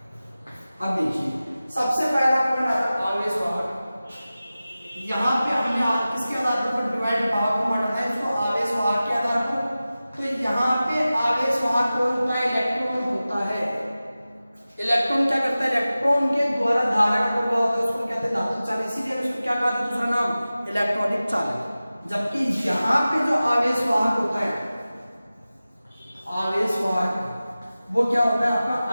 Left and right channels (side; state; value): both; inverted; correlation -0.96